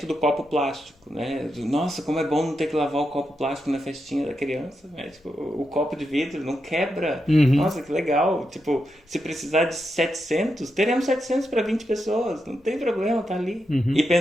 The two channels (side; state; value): both; normal; correlation 0.85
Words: do copo plástico, né? Nossa, como é bom não ter que lavar o copo plástico na festinha da criança, né? Tipo, o copo de vidro não quebra. Nossa, que legal. Tipo, se precisar de 700, teremos 700 para 20 pessoas. Não tem problema, tá ali. E